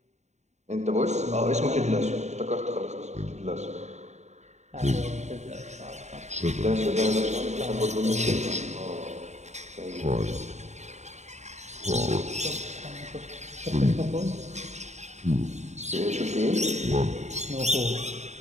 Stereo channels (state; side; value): late; left; 0.33 ms